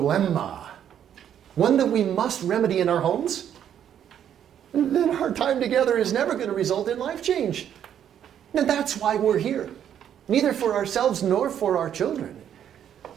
one that we must remedy in our homes, then our time together is never going to result in life change. And that's why we're here. Neither for ourselves nor for our children.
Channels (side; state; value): left; quieter; 9.6 dB